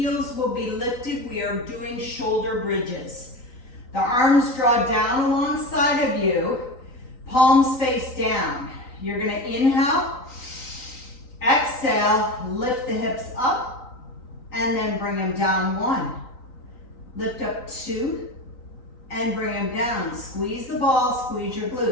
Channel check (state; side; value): late; right; 3.9 ms